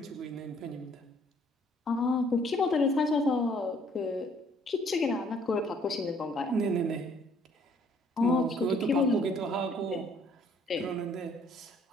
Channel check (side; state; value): both; normal; correlation 0.61